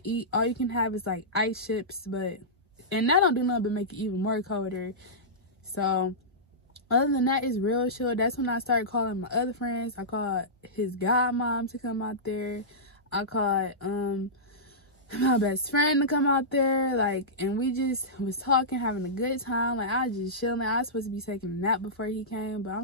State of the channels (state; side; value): normal; both; correlation -0.15